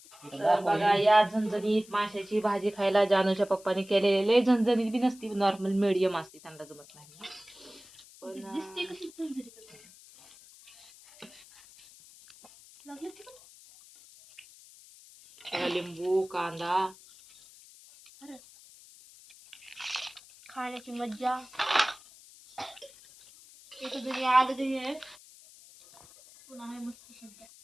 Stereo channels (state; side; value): noise; left; hiss, 22 dB below the sound